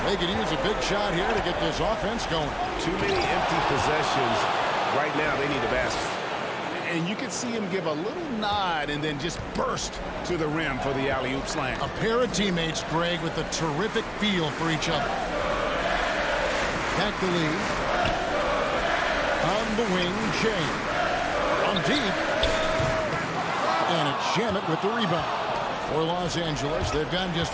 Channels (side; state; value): both; identical; correlation 1.00